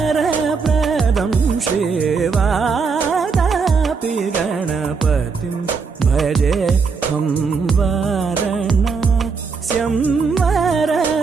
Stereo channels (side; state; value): left; quieter; 5.1 dB